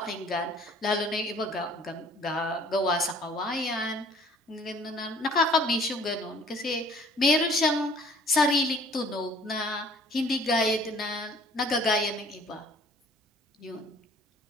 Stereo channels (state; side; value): normal; both; correlation 0.54